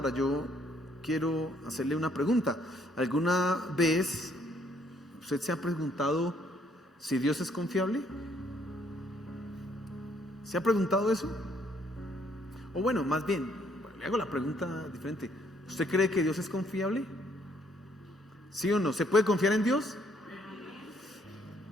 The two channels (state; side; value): normal; both; correlation 0.67